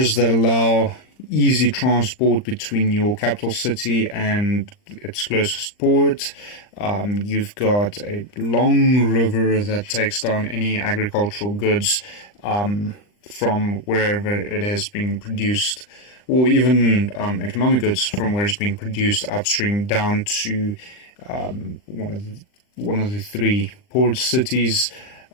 that allow easy transport between your capital city and its closest port. You've got a long river that takes down any agricultural goods from wherever it has been produced, or even economic goods from where it's being produced upstream down to one of the three port cities.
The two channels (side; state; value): right; late; 39 ms